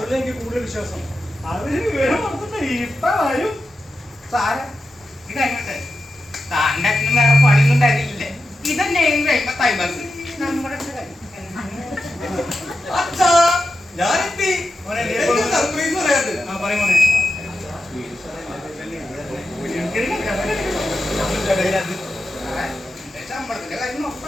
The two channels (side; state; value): both; normal; correlation 0.89